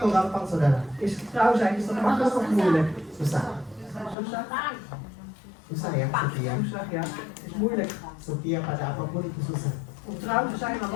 gampang saudara? Is getrouw zijn, is dat makkelijk of moeilijk? Susah. Susah? Susah ya setia. Susah, ja. Is moeilijk. Setia pada apapun itu susah. Om trouw te zijn aan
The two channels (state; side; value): drops out; right; at 4.2 s